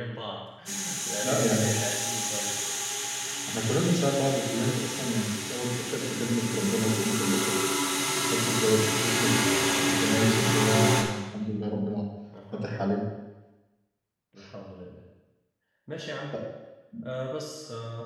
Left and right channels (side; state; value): both; identical; correlation 1.00